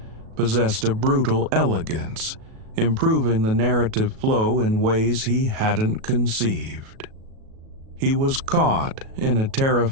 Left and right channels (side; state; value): left; late; 37 ms